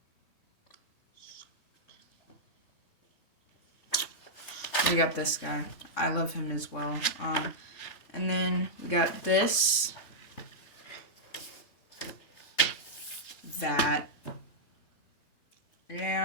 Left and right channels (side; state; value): right; late; 3.6 ms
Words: We got this guy. I love him as well. And then we got this. That.